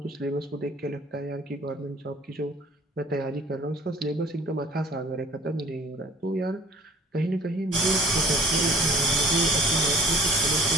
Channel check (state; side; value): normal; both; correlation 0.49